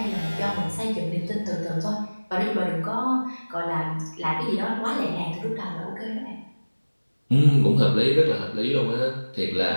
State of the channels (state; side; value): inverted; both; correlation -1.00